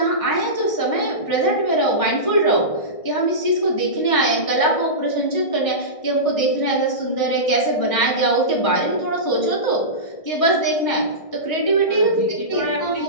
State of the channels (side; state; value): right; late; 1.6 ms